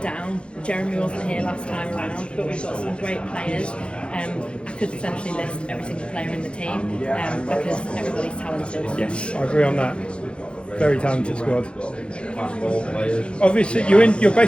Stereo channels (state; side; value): late; right; 0.057 ms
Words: down. Jeremy wasn't here last time around, but we've got some great players. I could essentially list every single player in the team because everybody's talented. Yes, I agree on that. Very talented squad. Obviously, you're